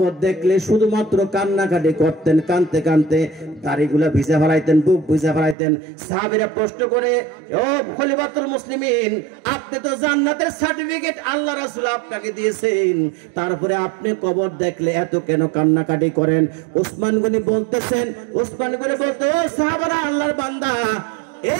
দেখলে শুধুমাত্র কান্নাকাটি করতেন, কানতে কানতে দাড়িগুলা ভিজা ফেলাইতেন, বুক ভিজা ফেলাইতেন। সাহাবীরা প্রশ্ন করে, ও খলিফাতুল মুসলিমিন, আপনি তো জান্নাতের সার্টিফিকেট আল্লাহ রাসূল আপনাকে দিয়েছেন, তারপরে আপনি কবর দেখলে এত কেন কান্নাকাটি করেন? ওসমান গনি বলতেছেন, ওসমান গনি বলতে, ও সাহাবারা, আল্লাহর বান্দা,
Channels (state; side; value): drops out; left; at 5.6 s